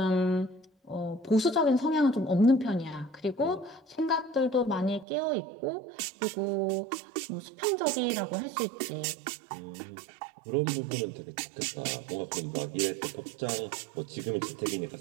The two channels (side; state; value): left; drops out; at 5.1 s